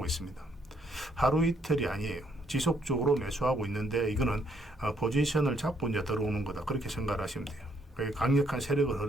있습니다. 하루 이틀이 아니에요. 지속적으로 매수하고 있는데 이거는 포지션을 잡고 이제 들어오는 거다. 그렇게 생각을 하시면 돼요. 그게 강력한 세력의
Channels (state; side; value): normal; both; correlation 0.70